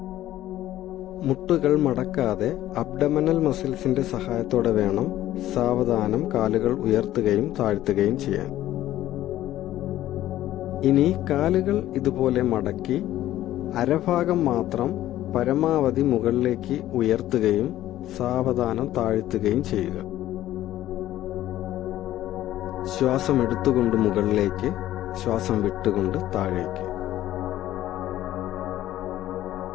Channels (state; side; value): quieter; right; 13.8 dB